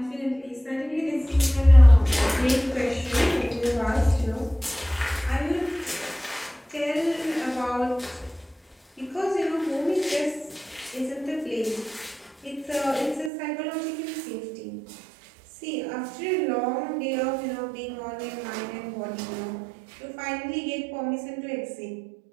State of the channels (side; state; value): left; drops out; at 13.3 s